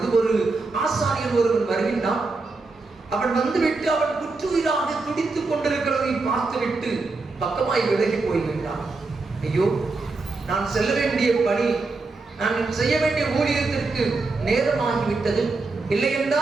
ஒரு ஆசாரியன் ஒருவன் வருகின்றான். அவன் வந்துவிட்டு அவன் குற்றுயிராக துடித்துக் கொண்டிருக்கிறதை பார்த்துவிட்டு பக்கமாய் விலகி போய்விட்டான். ஐயோ, நான் செல்ல வேண்டிய பணி, நான் செய்ய வேண்டிய ஊழியத்திற்கு நேரமாகிவிட்டது. இல்லை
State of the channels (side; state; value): left; quieter; 3.7 dB